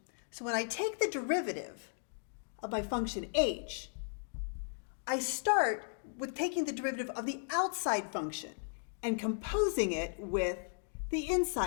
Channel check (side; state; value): right; silent; 54 dB below the other